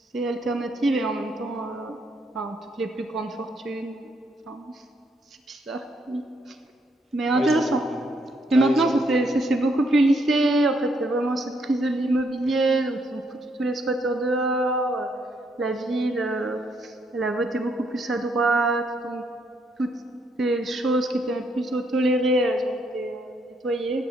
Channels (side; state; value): both; normal; correlation 0.73